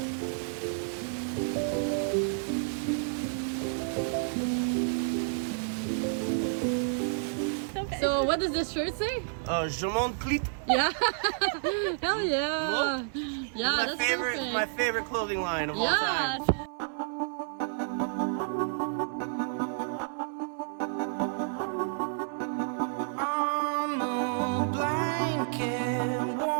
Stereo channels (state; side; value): silent; left; 58 dB below the other